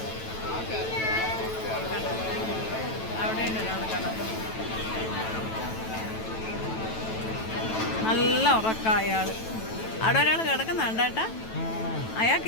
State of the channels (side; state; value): right; late; 9.1 ms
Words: അവിടെയുണ്ട് ഒരാൾ കിടക്കുന്നു. നല്ല ഉറക്കം അയാൾ. അവിടെ ഒരാൾ കിടക്കുന്നുണ്ട് കേട്ടാ.